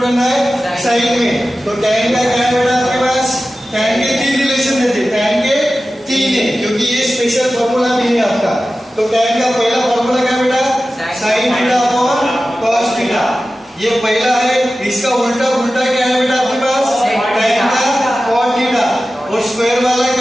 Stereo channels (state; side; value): normal; both; correlation 0.94